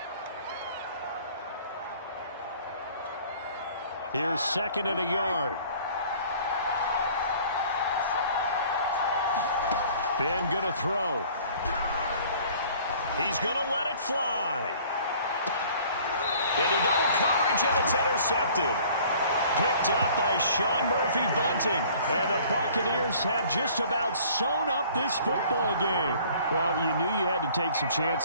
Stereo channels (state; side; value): inverted; both; correlation -0.52